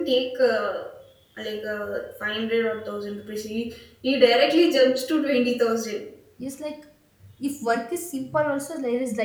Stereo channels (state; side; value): identical; both; correlation 1.00